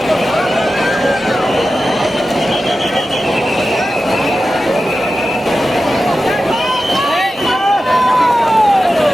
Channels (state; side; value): normal; both; correlation 0.93